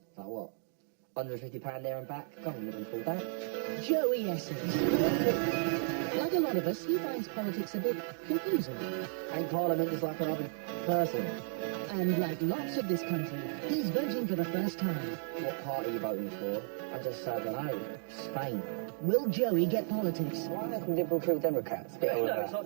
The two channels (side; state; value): left; silent; 55 dB below the other